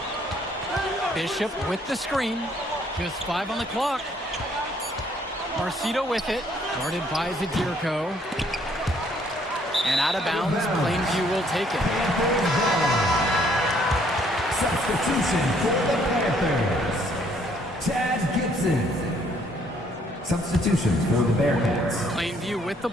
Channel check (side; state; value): both; normal; correlation 0.65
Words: Bishop with the screen. Just 5 on the clock. Marcita with it. Guarded by Zadirko. And out of bounds, Plainview will take it. Substitution for the Panthers. Chad Gibson. Substitution for the Bearcats. Plainview with the